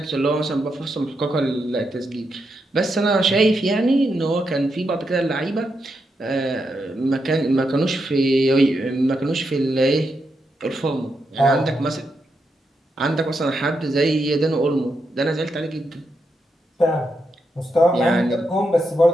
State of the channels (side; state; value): both; normal; correlation 0.83